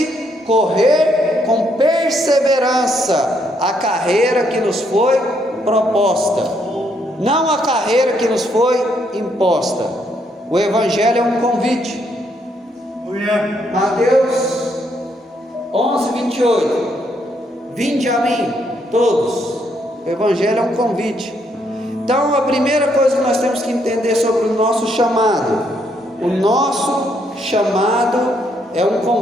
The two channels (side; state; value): both; normal; correlation 0.73